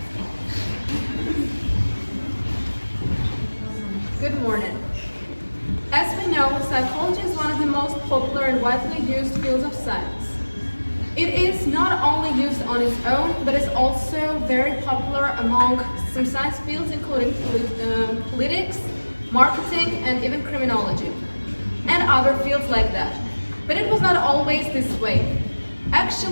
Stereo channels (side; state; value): both; inverted; correlation -1.00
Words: Good morning. As we know, psychology is one of the most popular and widely used fields of science. It is not only used on its own, but is also very popular among some science fields, including politics, marketing, and even criminology, and other fields like that. But it was not always this way.